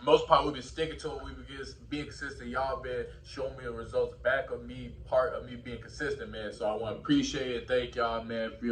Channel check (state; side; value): identical; both; correlation 1.00